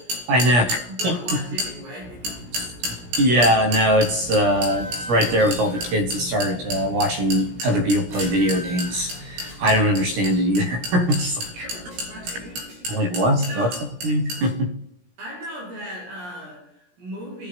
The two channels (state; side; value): late; left; 17 ms